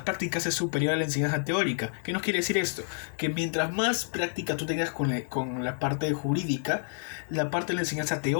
prácticas es superior a la enseñanza teórica. ¿Qué nos quiere decir esto? Que mientras más práctica tú tengas con la parte jurídica, la parte de la enseñanza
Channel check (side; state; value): right; silent; 59 dB below the other